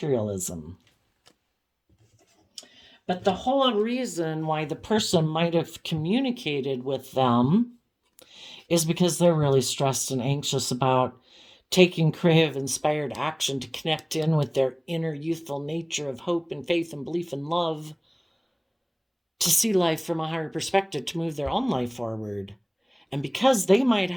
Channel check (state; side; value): identical; both; correlation 1.00